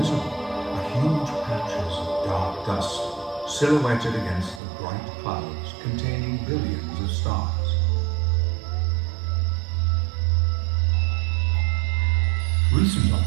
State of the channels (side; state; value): left; drops out; at 4.6 s